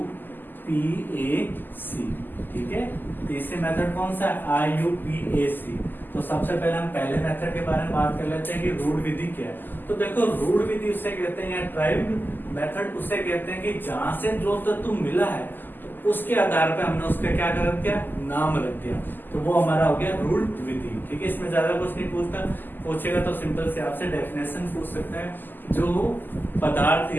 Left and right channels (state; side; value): late; right; 0.090 ms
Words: ठीक है। तीसरी मेथड कौन सा है, IUPAC। तो सबसे पहले हम पहले मेथड के बारे में बात कर लेते हैं कि रूढ़ विधि क्या है। तो देखो रूढ़ विधि उसे कहते हैं, या ट्राइब्ड मेथड उसे कहते हैं कि जहां से जो तत्व मिला है तो उसके आधार पे हमने उसका क्या कर दिया, नाम रख दिया, तो वो हमारा हो गया रूढ़ विधि, ठीक है। इसमें ज्यादा कुछ नहीं पूछेगा तो सिंपल से आपसे डेफिनेशन पूछ सकता है, जो पदार्थ